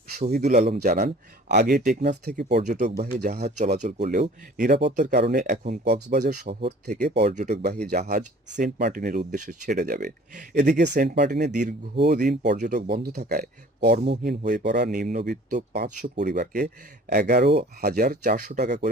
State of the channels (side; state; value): both; normal; correlation 0.49